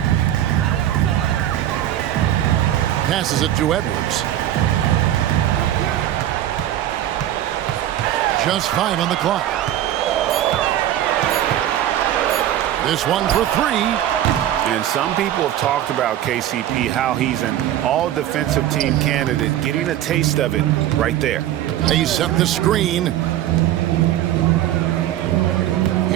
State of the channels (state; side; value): quieter; left; 12.2 dB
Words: Passes it to Edwards. Just 5 on the clock. This one for 3. And some people have talked about KCP, how he's an all-defensive team candidate, getting a taste of it right there. They set the screen.